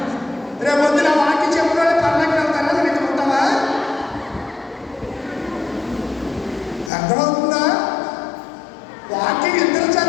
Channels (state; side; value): drops out; right; at 6.9 s